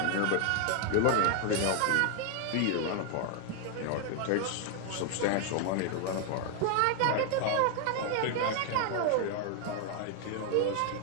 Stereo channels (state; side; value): different; both; correlation 0.00